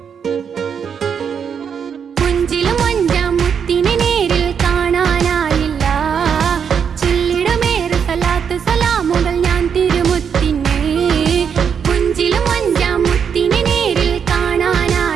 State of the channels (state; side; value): quieter; left; 7.2 dB